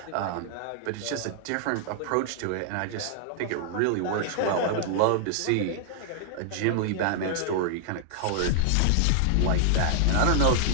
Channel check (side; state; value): both; different; correlation 0.00